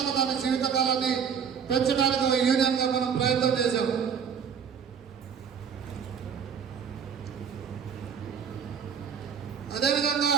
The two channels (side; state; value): left; quieter; 7.2 dB